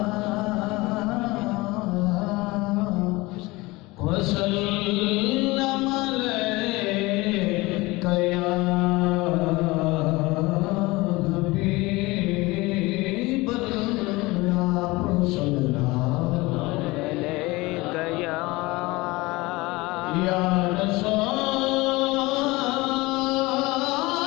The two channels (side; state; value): right; quieter; 22.0 dB